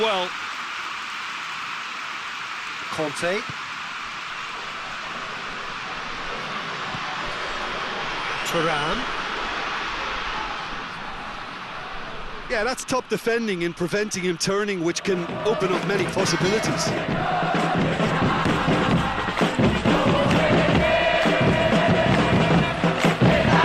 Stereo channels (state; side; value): identical; both; correlation 1.00